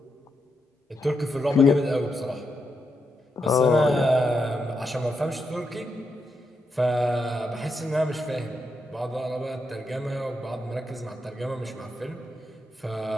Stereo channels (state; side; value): normal; both; correlation 0.83